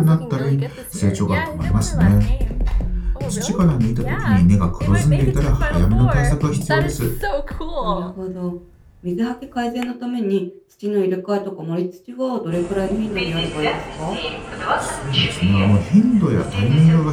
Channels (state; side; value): identical; both; correlation 1.00